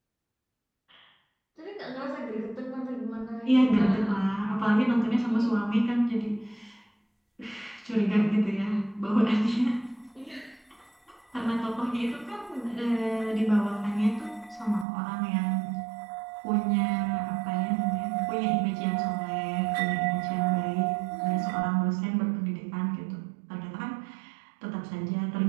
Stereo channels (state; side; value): drops out; left; at 14.9 s